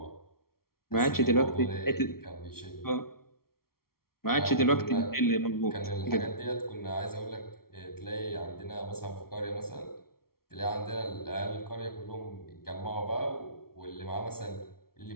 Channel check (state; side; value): late; right; 0.94 ms